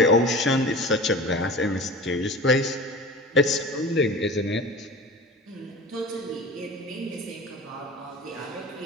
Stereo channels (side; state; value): both; normal; correlation 0.35